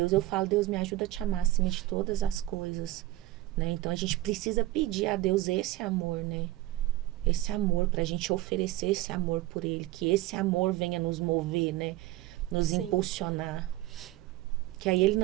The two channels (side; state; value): left; quieter; 16.6 dB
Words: Eu falo, Deus, me ajuda a te amar acima de todas as coisas. Né? Então, a gente precisa pedir a Deus esse amor, né? Esse amor, pra gente oferecer esse amor por Ele. Que esse amor venha nos mover, né? Nos impulsionar. Que aí Ele